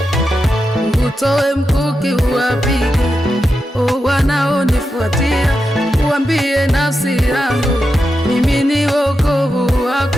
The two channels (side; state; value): both; normal; correlation 0.88